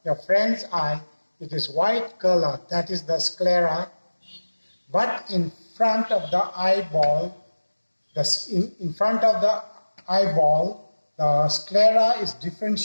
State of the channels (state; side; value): inverted; both; correlation -1.00